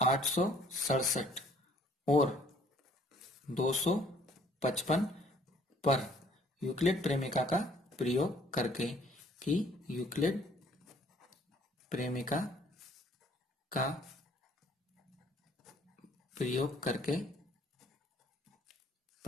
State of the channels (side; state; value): both; normal; correlation 0.59